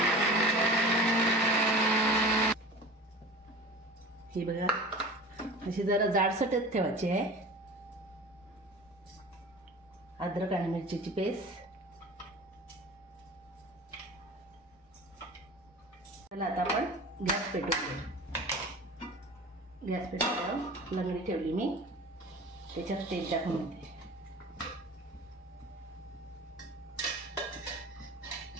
ही बघा, अशी जरा जाडसरच ठेवायची आहे। अद्रक आणि मिरचीची पेस्ट। चला आता आपण गॅस पेटवून घेऊ। गॅस पेटवल्यावर लंगडी ठेवली मी, त्याच्यात तेल टाकून घेते।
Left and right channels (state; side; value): normal; both; correlation 0.38